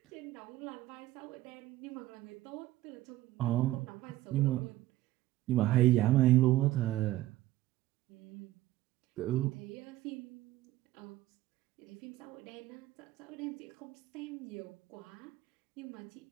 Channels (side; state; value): left; quieter; 15.7 dB